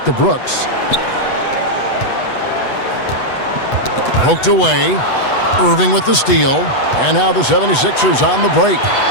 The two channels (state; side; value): late; right; 8.1 ms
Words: to Brooks. Poked away. Irving with the steal. And now the 76ers on the break.